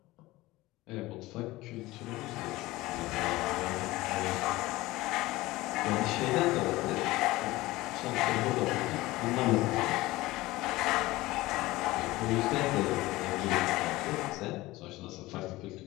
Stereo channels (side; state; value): right; quieter; 19.0 dB